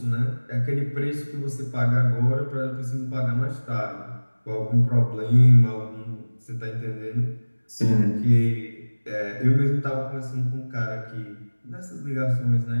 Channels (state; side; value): inverted; both; correlation -1.00